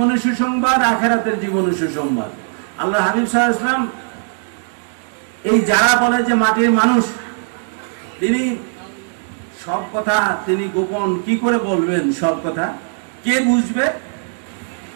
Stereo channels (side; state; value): left; silent; 67 dB below the other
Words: সুসংবাদ, আখিরাতের জীবনে সুসংবাদ। আল্লাহ হাবিব সাল্লাল্লাহু আলাইহি ওয়াসাল্লাম এই যারা বলে যে মাটির মানুষ, তিনি সব কথা তিনি গোপন কি করে বলবেন? সব কথা কে বুঝবে?